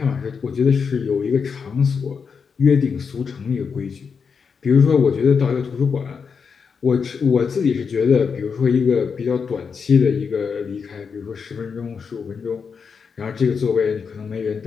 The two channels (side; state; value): right; quieter; 5.9 dB